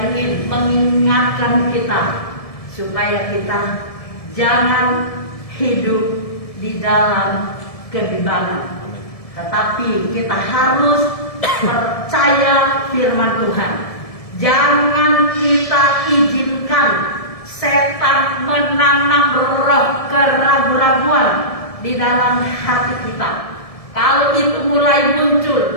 ingin mengingatkan kita supaya kita jangan hidup di dalam kebimbangan, tetapi kita harus percaya firman Tuhan. Jangan kita izinkan setan menanam roh keraguan-raguan di dalam hati kita. Kalau itu mulai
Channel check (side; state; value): right; late; 1.7 ms